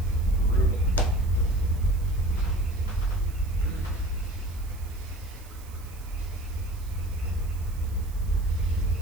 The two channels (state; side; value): noise; right; hiss, 22 dB below the sound